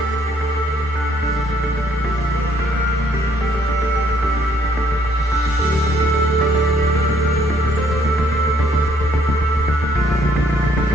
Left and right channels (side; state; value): both; normal; correlation 0.66